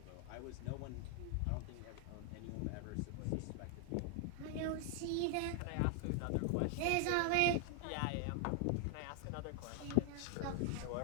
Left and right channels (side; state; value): both; different; correlation 0.00